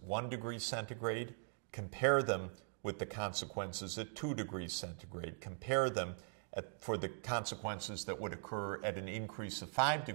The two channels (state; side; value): silent; left; digital silence